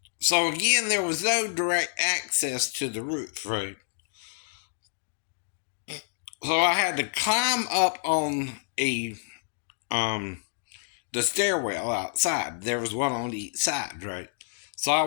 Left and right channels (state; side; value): silent; right; digital silence